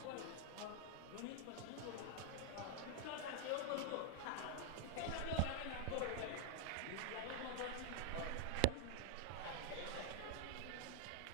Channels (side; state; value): both; different; correlation 0.00